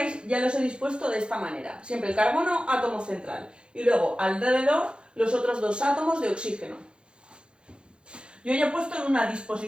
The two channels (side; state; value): left; late; 0.053 ms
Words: ya los he dispuesto de esta manera. Siempre el carbono, átomo central. Y luego alrededor los otros 2 átomos de oxígeno. Yo ya he puesto en una